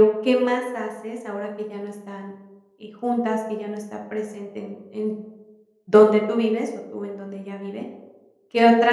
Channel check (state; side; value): identical; both; correlation 1.00